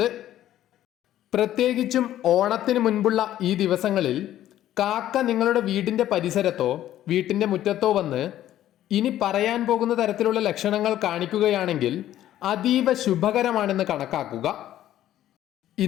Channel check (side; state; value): right; quieter; 12.6 dB